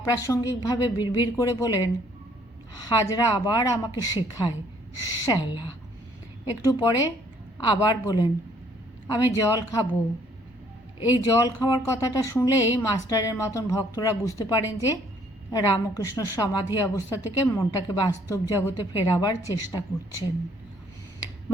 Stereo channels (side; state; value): both; normal; correlation 0.63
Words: বিড়বিড় করে বলেন, হাজরা আবার আমাকে শেখায়, শ্যালা। একটু পরে আবার বলেন, আমি জল খাবো। এই জল খাওয়ার কথাটা শুনলেই মাস্টারের মতন ভক্তরা বুঝতে পারেন যে রামকৃষ্ণ সমাধি অবস্থা থেকে মনটাকে বাস্তব জগতে ফেরাবার চেষ্টা করছেন।